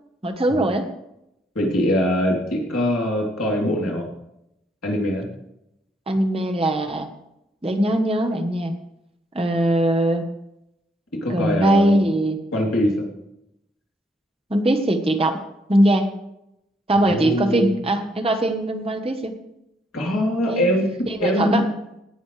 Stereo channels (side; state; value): both; normal; correlation 0.71